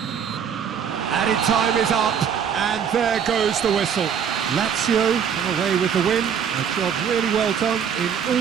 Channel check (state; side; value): quieter; left; 7.7 dB